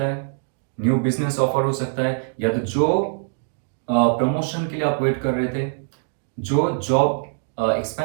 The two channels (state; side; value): silent; left; digital silence